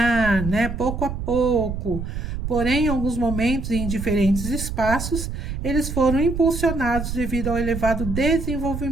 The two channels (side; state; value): right; noise; rumble, 5 dB below the sound